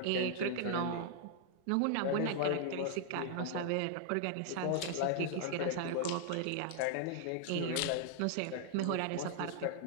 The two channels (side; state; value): both; different; correlation 0.00